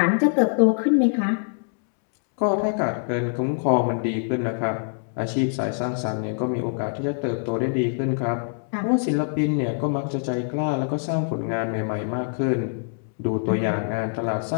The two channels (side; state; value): right; silent; 62 dB below the other